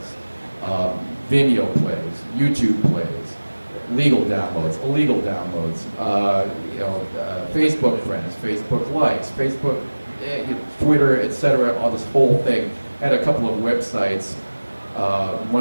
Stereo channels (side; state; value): both; inverted; correlation -1.00